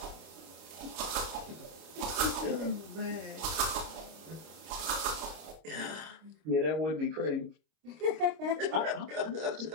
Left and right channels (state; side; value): late; left; 26 ms